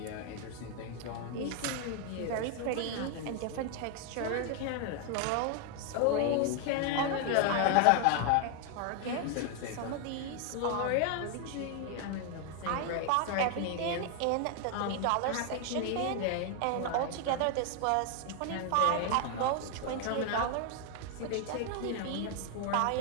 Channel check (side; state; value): both; different; correlation 0.01